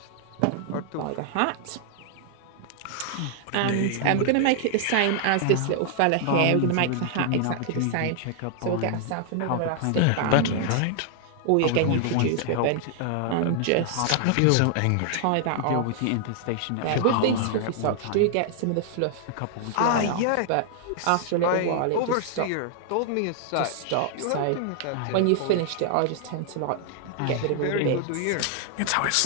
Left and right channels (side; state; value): both; different; correlation 0.00